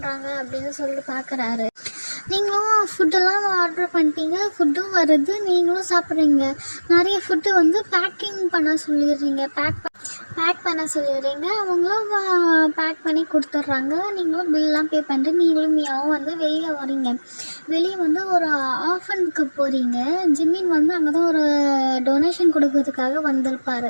அப்படின்னு சொல்லிட்டு பார்க்குறாரு. நீங்களும் ஃபுட்டெல்லாம் ஆர்டர் பண்ணிட்டீங்க, ஃபுட்டும் வருது, நீங்களும் சாப்பிட்றீங்க. நிறைய ஃபுட்டு பேக்கிங் பண்ண சொல்லிடுறீங்க, பேக் பண்ண சொல்லிடுறீங்க. அவங்களும் பேக் பண்ணி கொடுத்துட்றாங்க. நீங்களும் பில்லாம் பே பண்ணிட்டு நீங்களும் மியாவும் வெளியே வரீங்க. வெளியே ஒரு ஆஃபனுக்கு போகிறீங்க. ஜிம்மின் அங்கே தான் ஒரு டொனேஷன் கொடுக்கறதுக்காக வந்திருப்பார்.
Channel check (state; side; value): inverted; both; correlation -1.00